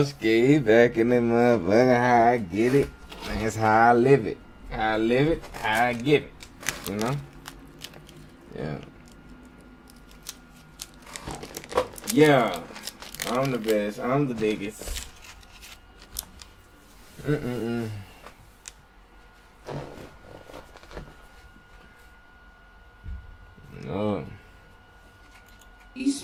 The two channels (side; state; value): both; identical; correlation 1.00